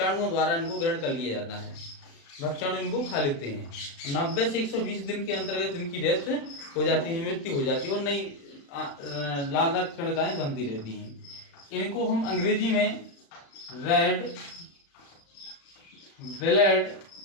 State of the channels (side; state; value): right; late; 36 ms